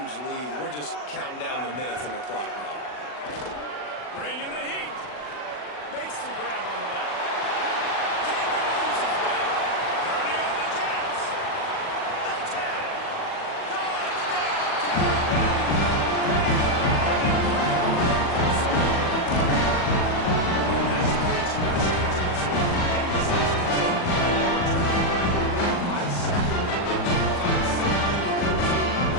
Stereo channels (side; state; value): right; late; 40 ms